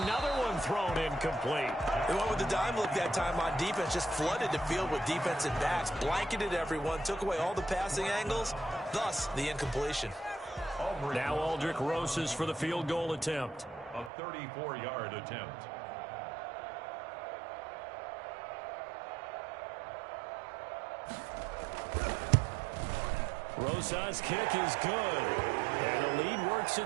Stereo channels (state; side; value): drops out; left; at 14.1 s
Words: another one thrown incomplete. They went with the dime look that time on defense, just flooded the field with defensive backs, blanketed everyone, took away all the passing angles, thus the incompletion. Now Aldrich Roses for the field goal attempt. A 34-yard attempt. Rosas' kick is good. And the lead works